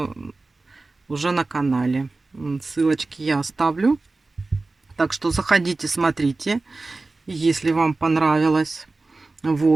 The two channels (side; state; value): left; quieter; 3.4 dB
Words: уже на канале. Ссылочки я оставлю. Так что заходите, смотрите, если вам понравилось.